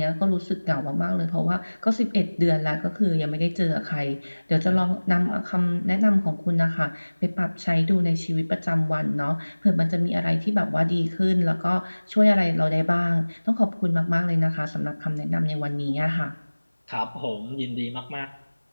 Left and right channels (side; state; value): both; inverted; correlation -1.00